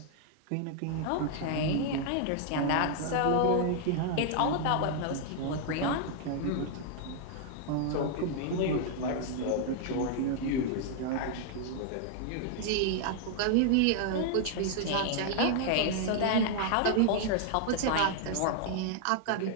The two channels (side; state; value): both; different; correlation 0.00